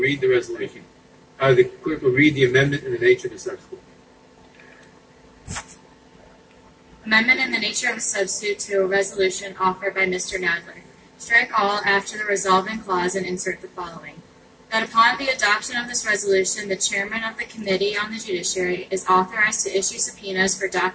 the resolution. The clerk will read the amendment and the nature of the substitute. Amendment in the nature of a substitute to a resolution offered by Mr. Nadler. Strike all after the resolving clause and insert the following. That upon the adoption of this resolution, the chairman of the Committee on the Judiciary is authorized to issue subpoenas for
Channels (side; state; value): both; identical; correlation 1.00